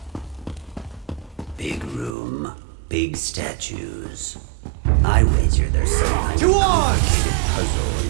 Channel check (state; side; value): drops out; left; at 2.1 s